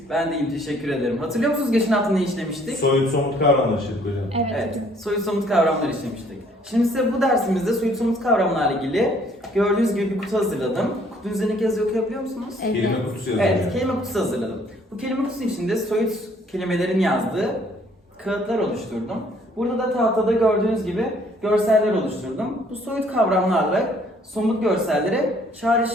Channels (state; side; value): normal; both; correlation 0.61